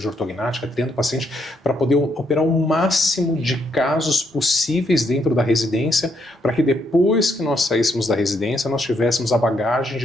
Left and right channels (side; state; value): both; normal; correlation 0.75